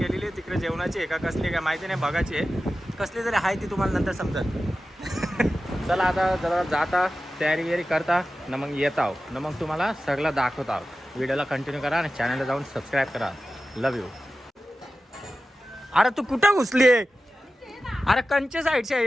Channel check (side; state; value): both; normal; correlation 0.94